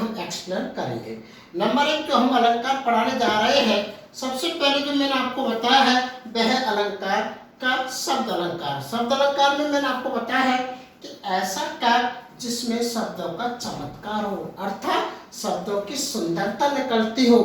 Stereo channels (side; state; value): both; identical; correlation 1.00